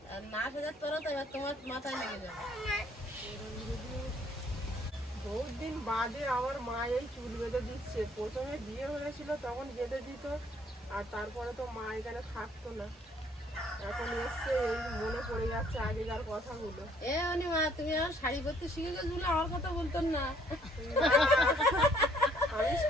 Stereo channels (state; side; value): normal; both; correlation 0.63